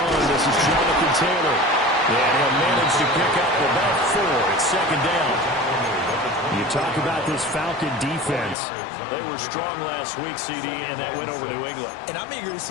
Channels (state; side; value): drops out; right; at 8.6 s